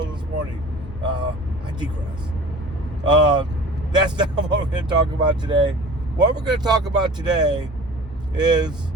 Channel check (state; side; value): normal; both; correlation 0.42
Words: this morning. I digress. That's not what we're going to talk about today. What we're going to talk about today is